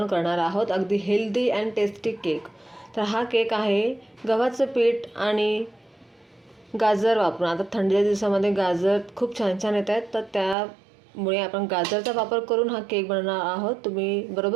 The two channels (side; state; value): left; drops out; at 10.6 s